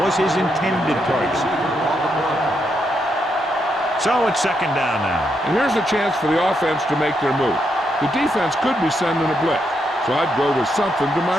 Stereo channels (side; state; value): both; normal; correlation 0.80